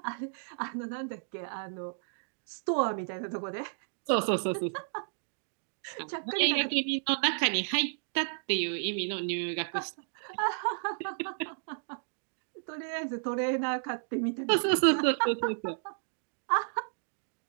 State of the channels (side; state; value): left; silent; digital silence